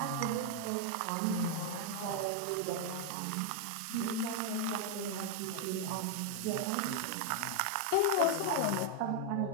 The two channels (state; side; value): different; both; correlation 0.00